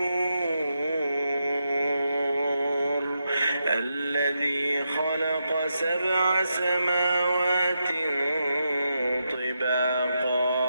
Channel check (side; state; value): both; inverted; correlation -0.85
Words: الغفور الذي خلق 7 سماوات